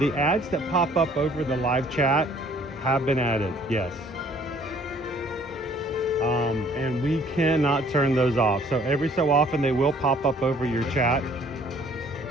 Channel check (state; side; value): normal; both; correlation 0.58